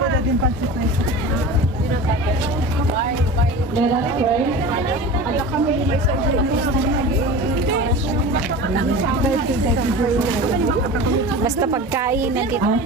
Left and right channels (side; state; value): both; normal; correlation 0.33